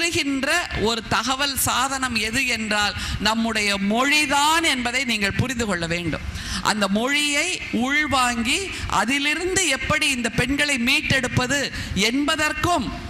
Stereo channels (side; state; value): both; identical; correlation 1.00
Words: ஒரு தகவல் சாதனம் எது என்றால் நம்முடைய மொழிதான் என்பதை நீங்கள் புரிந்து கொள்ள வேண்டும். அந்த மொழியை உள்வாங்கி அதிலிருந்து எப்படி இந்த பெண்களை மீட்டெடுப்பது என்பதற்கும்